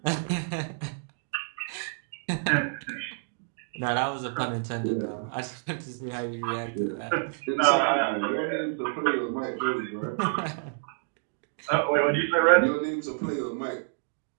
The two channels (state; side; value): silent; left; digital silence